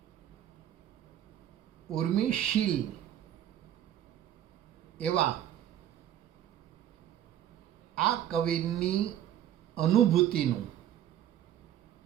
ઉર્મિશીલ એવા આ કવિની અનુભૂતિનું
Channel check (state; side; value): quieter; left; 11.2 dB